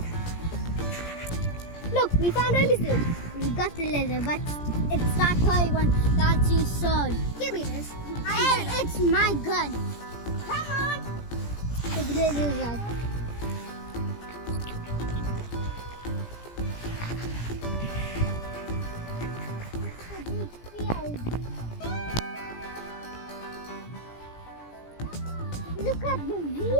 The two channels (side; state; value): right; late; 17 ms